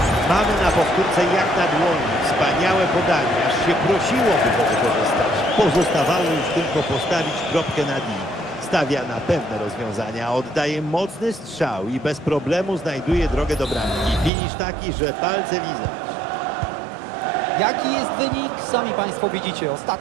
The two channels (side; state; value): left; drops out; at 14.3 s